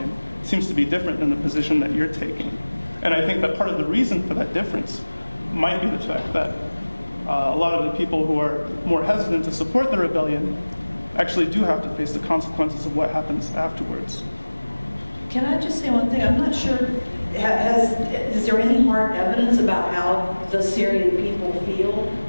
seems to be different than the position that you're taking. And I think that part of the reason for that difference might be the fact that a lot of the people who are more hesitant to support the rebellion actually do have to face the consequences of what happens afterwards. Can I just say one thing? I'm not sure, is there any hard evidence about how the Syrian people feel?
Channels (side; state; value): both; inverted; correlation -1.00